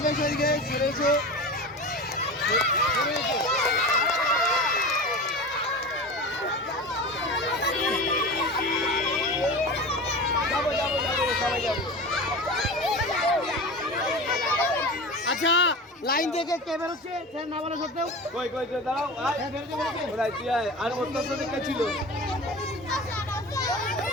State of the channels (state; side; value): normal; both; correlation 0.30